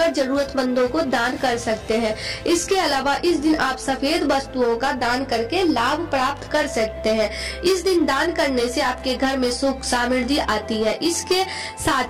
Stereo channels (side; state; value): both; identical; correlation 1.00